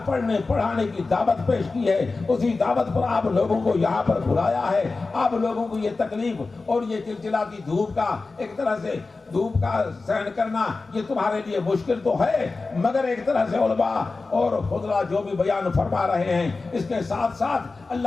پڑھنے پڑھانے کی دعوت پیش کی ہے، اسی دعوت پر آپ لوگوں کو یہاں پر بلایا ہے۔ آپ لوگوں کو یہ تکلیف اور یہ چلچلاتی دھوپ کا، ایک طرح سے دھوپ کا سہن کرنا، یہ تمہارے لیے مشکل تو ہے، مگر ایک طرح سے علماء اور خضراء جو بھی بیان فرما رہے ہیں، اس کے ساتھ ساتھ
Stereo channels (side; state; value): right; quieter; 3.8 dB